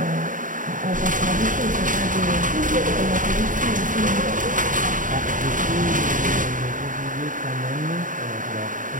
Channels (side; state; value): left; late; 0.38 ms